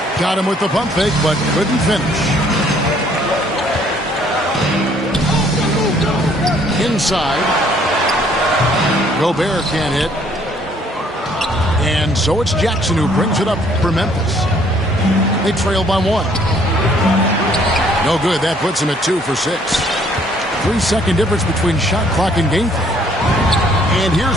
Got him with the pump fake, but couldn't finish. Inside. Gobert can't hit. And so it's Jackson who brings it up for Memphis. They trail by 1. No good. That puts him at 2 for 6. 3-second difference between shot clock and game clock. And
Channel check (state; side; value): normal; both; correlation 0.62